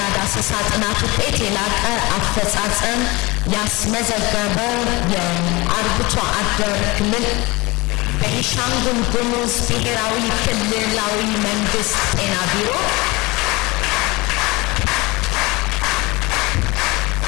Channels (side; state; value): right; quieter; 23.5 dB